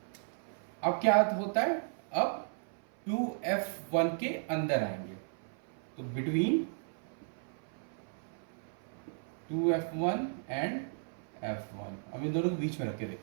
अब क्या होता है, अब 2f1 के अंदर आएंगे, तो बिटवीन 2f1 एंड f1, अब इन दोनों के बीच में रख के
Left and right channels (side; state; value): left; silent; 54 dB below the other